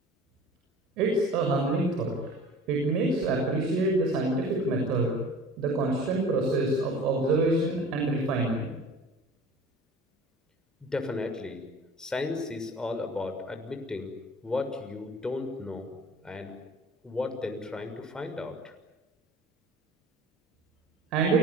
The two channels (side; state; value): both; normal; correlation 0.44